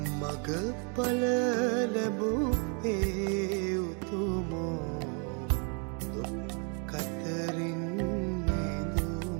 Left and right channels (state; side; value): quieter; left; 38.0 dB